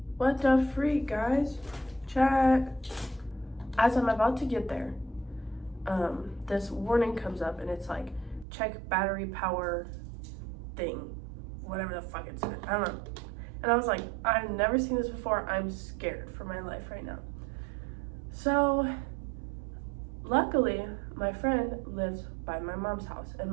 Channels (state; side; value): drops out; left; at 8.5 s